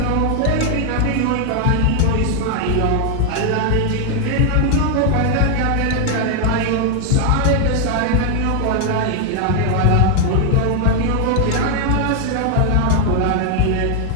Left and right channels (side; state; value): both; different; correlation 0.00